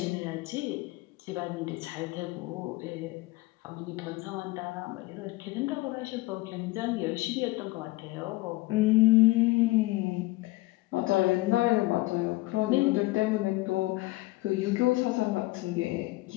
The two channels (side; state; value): right; quieter; 20.6 dB